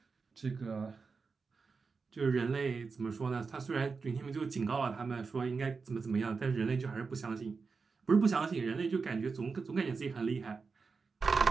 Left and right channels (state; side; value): quieter; left; 4.8 dB